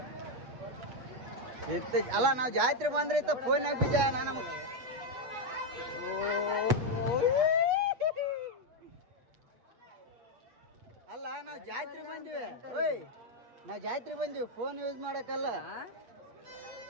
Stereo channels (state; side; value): late; left; 8.2 ms